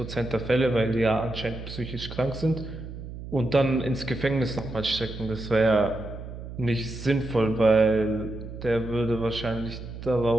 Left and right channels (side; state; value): right; noise; hum, 11 dB below the sound